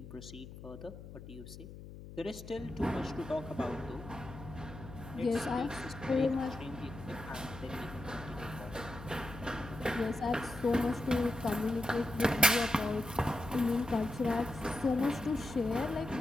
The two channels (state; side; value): noise; left; hum, 13 dB below the sound